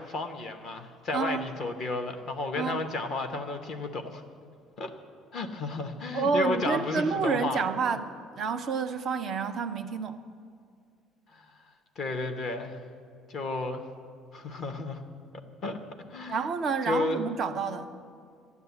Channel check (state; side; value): normal; both; correlation 0.57